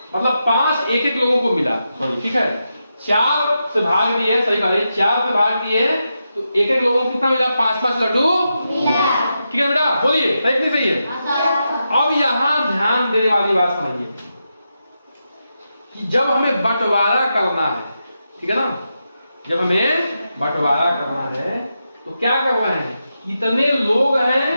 मतलब 5 एक लोगों को मिला। सॉरी, ठीक है। 4 से भाग दिए, सही कह रहे, 4 से भाग दिए तो एक लोगों को कितना मिला? 5 लड्डू मिला। ठीक है बेटा, बोलिए सही नहीं सही है? अब यहाँ ध्यान देने वाली बात समझिए कि जब हमें बंटवारा करना है, ठीक है ना, जब हमें बंटवारा करना है तो क्या करना है? कितने लोग हैं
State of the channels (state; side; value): inverted; both; correlation -0.87